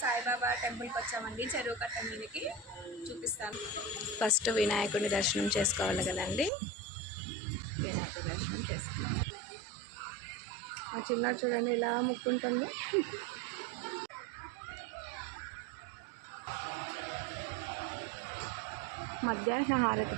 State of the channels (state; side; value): drops out; left; at 6.5 s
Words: సాయిబాబా టెంపుల్కి వచ్చామండి, చెరువు కట్ట మీదకి చూపిస్తాను. ఫస్ట్ వినాయకుడిని దర్శనం చేసుకోవాలి కదండి, వినాయకుడి దర్శనం చేసుకున్నాం. ఆ చిన్న చూడండి ఎలా ముక్కుంటుందో. మధ్యాహ్న హారతి